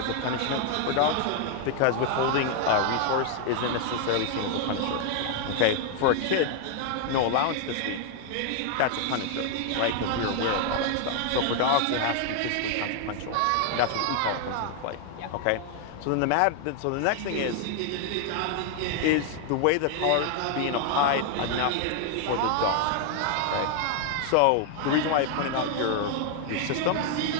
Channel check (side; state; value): both; different; correlation 0.00